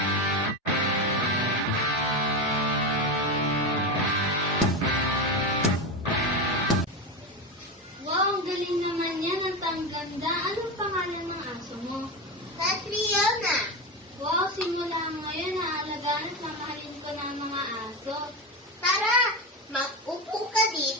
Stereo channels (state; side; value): normal; both; correlation 0.17